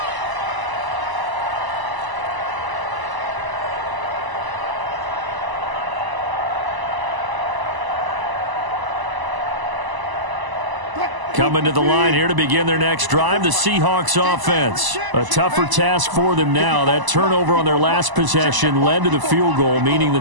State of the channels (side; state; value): left; late; 1.0 ms